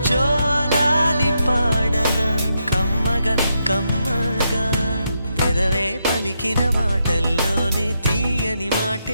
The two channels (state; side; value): inverted; both; correlation -0.82